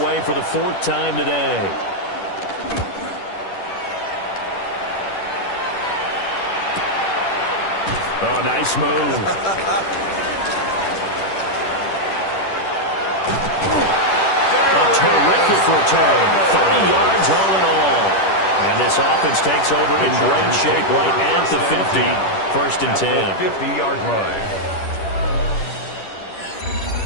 for the 4th time today. Oh, nice move. A terrific return. 30 yards all in all. And this offense takes over in great shape right at the 50. 1st and 10. 50-yard line.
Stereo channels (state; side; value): late; right; 10 ms